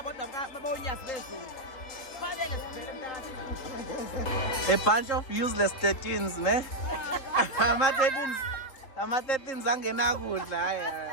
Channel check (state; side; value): late; right; 3.8 ms